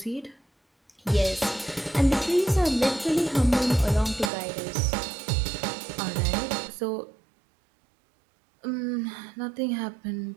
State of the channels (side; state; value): left; drops out; at 4.3 s